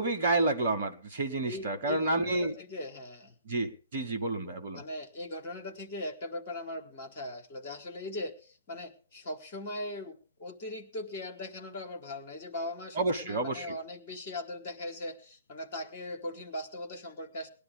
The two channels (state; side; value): inverted; both; correlation -0.56